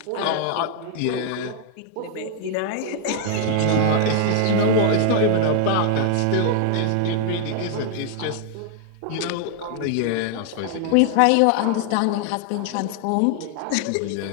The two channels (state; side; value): different; both; correlation 0.00